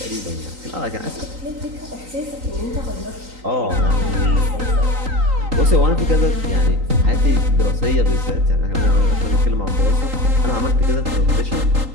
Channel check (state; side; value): late; left; 3.9 ms